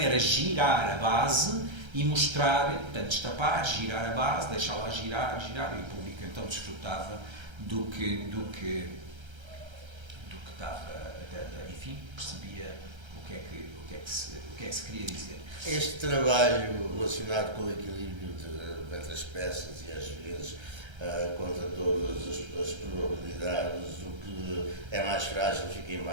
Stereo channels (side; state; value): left; late; 1.3 ms